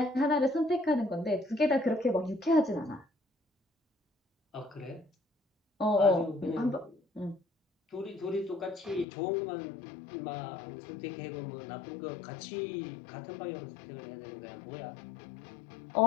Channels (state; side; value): drops out; right; at 9.1 s